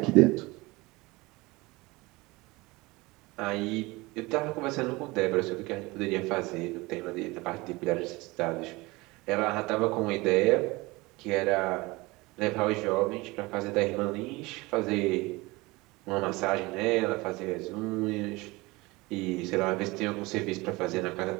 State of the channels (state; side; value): quieter; left; 22.5 dB